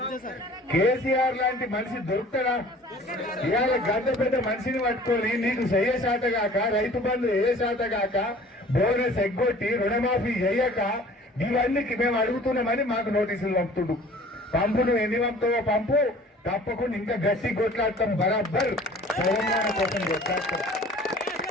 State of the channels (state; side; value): normal; both; correlation 0.48